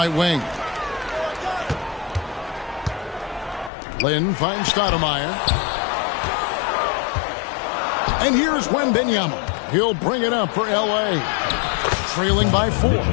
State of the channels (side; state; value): right; drops out; at 3.7 s